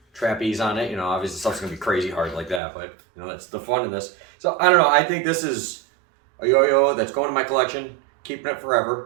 trapeze on it. You know, obviously stuff's gonna be crazy hard like that, but you know, that's the fun in this. So I don't know, I think this is a yo-yo that's going to my collection, keeping it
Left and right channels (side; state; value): left; drops out; at 2.6 s